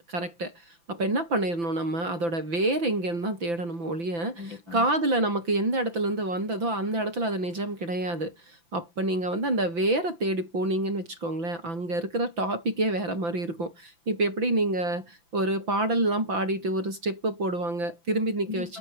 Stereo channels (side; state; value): left; late; 5.9 ms